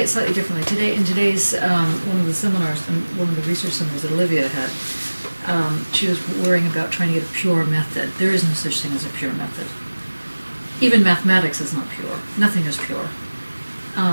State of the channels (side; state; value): both; inverted; correlation -1.00